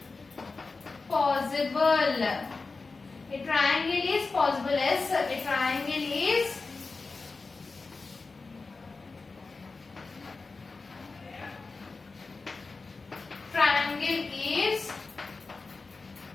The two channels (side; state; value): right; quieter; 4.0 dB